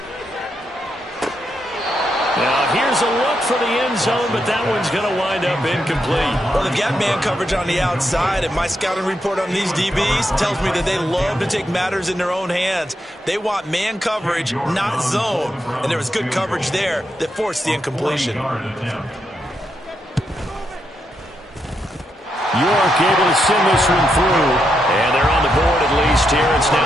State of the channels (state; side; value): normal; both; correlation 0.82